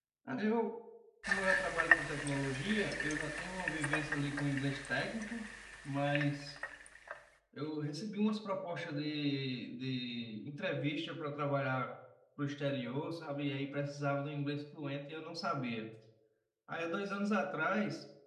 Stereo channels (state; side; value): identical; both; correlation 1.00